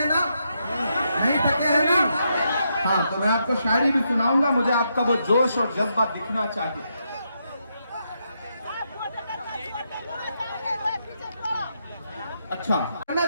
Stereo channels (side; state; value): both; inverted; correlation -0.81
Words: ना? नहीं थके हैं ना? हाँ, तो मैं आपको शायरी भी सुनाऊंगा, मुझे आपका वो जोश और जज्बा दिखना चाहिए। अच्छा, कहना